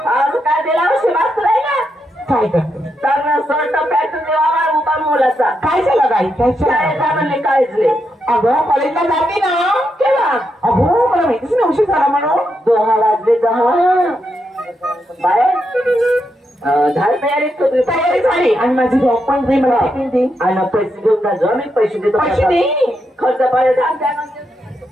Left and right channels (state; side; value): normal; both; correlation 0.83